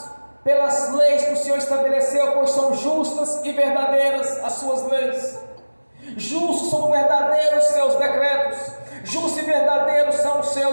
pelas leis que o Senhor estabeleceu, pois são justas e verdadeiras as suas leis. Justos são verdadeiros seus decretos, justos e verdadeiros são os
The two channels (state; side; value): inverted; both; correlation -1.00